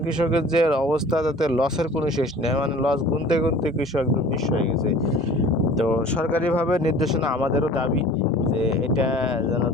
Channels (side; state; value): both; normal; correlation 0.45